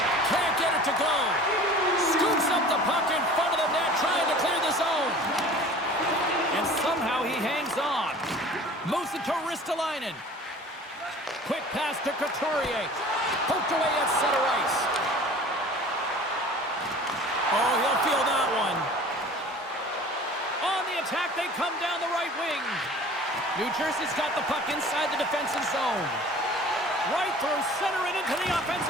Can't get it to go. Scoops up the puck in front of the net, trying to clear the zone. And somehow he hangs on. Moves it to Ristolainen. Quick pass to Couturier. Poked away at center ice. Oh, he'll feel that one. On the attack, they come down the right wing. New Jersey's got the puck inside the defensive zone. Right through center and into the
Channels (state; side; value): normal; both; correlation 0.44